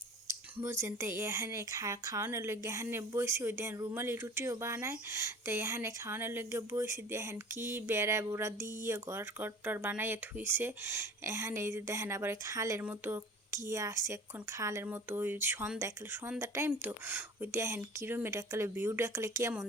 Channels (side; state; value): both; normal; correlation 0.42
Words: বুঝছেন। তো এখানে খাওয়ানোর লগে এখানে বইছি, ওই দেখেন রুমালি রুটিও বানায়। তো এখানে খাওয়ানোর লগে বইছি, দেখেন কি বেড়া বুড়া দিয়ে ঘর টর বানাইয়ে থুইছে। এখানে এই যে দেখেন আবার খালের মতো কি আছে, এখন খালের মতো ওই সন্ধ্যা টাইম তো ওই দেখেন কিরমের একালে ভিউটা একালে কেমন